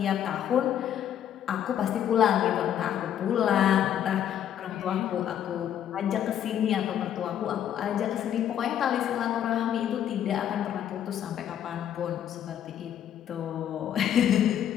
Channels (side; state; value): right; quieter; 10.2 dB